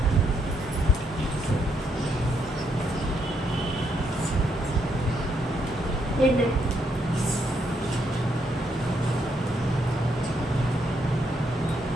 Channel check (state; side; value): normal; both; correlation 0.76